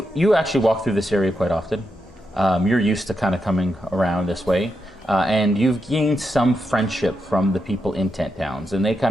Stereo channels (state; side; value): normal; both; correlation 0.85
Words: actually walk through this area quite often. You're used to kind of coming around this way, and you've gained some friendship from the people in Tent Towns, and they